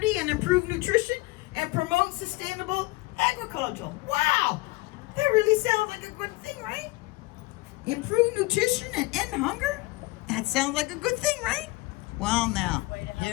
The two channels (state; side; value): quieter; right; 22.1 dB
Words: and improve nutrition, and promote sustainable agriculture. Wow, that really sounds like a good thing, right? Improve nutrition and end hunger? That sounds like a good thing, right? Well, now,